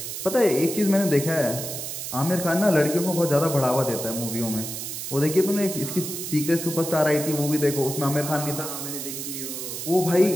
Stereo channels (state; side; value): noise; right; hiss, 6 dB below the sound